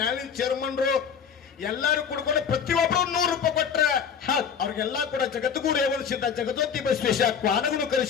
ಚೇರ್ಮನ್ರು ಎಲ್ಲರೂ ಕೂಡ್ಕೊಂಡು ಪ್ರತಿಯೊಬ್ಬರು 100 ರೂಪಾಯಿ ಕೊಟ್ರೆ. ಅವ್ರಿಗೆಲ್ಲ ಕೂಡ ಜಗದ್ಗುರು ರೇವಣ ಸಿದ್ಧ, ಜಗದೋತಿ ಬಸವೇಶ, ಕ್ವಾನಗುರು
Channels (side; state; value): right; quieter; 7.2 dB